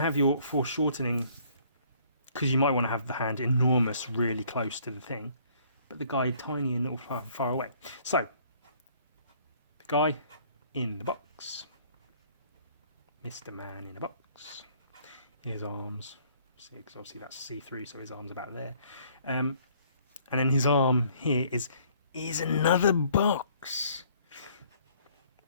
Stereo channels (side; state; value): both; inverted; correlation -0.60